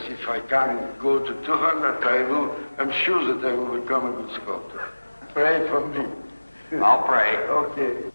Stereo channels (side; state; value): both; inverted; correlation -1.00